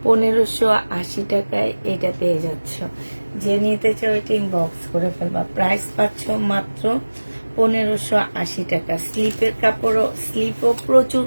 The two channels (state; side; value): inverted; both; correlation -1.00